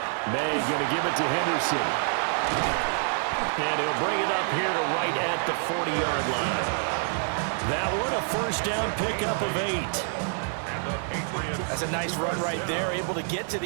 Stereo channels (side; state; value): left; silent; 60 dB below the other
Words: May going to give it to Henderson. And he'll bring it up here to right at the 40-yard line. That one a 1st down pickup of 8. That's a nice run right there, able to get to